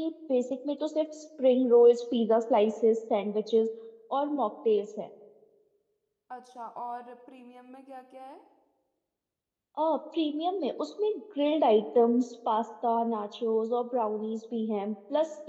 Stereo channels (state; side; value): identical; both; correlation 1.00